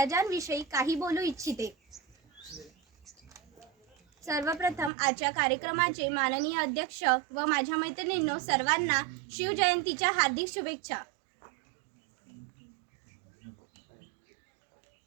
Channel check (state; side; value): drops out; left; at 4.9 s